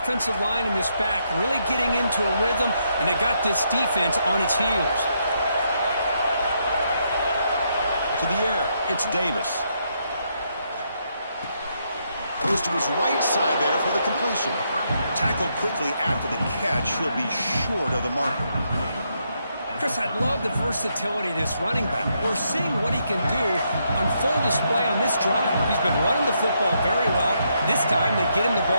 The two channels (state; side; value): inverted; both; correlation -0.77